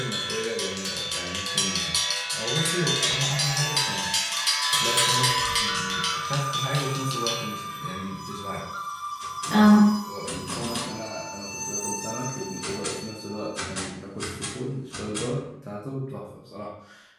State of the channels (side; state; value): both; identical; correlation 1.00